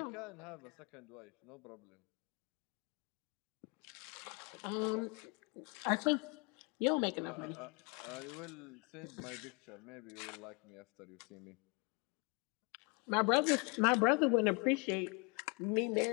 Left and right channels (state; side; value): quieter; right; 32.8 dB